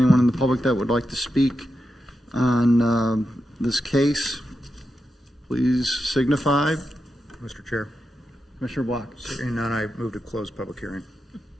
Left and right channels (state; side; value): normal; both; correlation 0.88